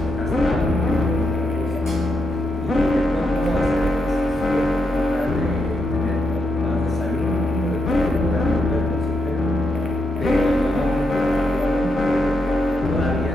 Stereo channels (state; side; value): normal; both; correlation 0.82